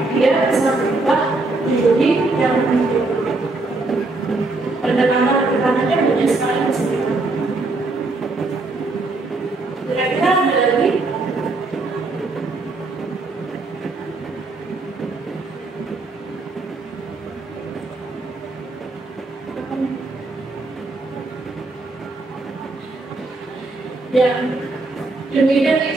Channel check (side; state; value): left; quieter; 3.3 dB